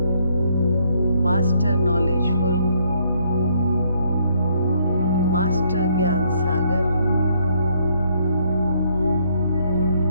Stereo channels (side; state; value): both; inverted; correlation -0.69